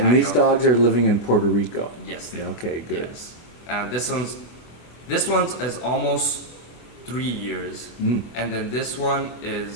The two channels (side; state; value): right; late; 24 ms